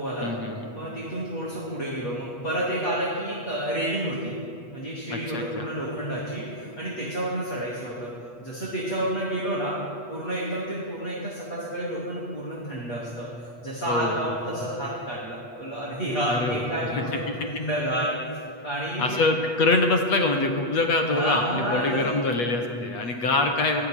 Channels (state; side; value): late; right; 8.3 ms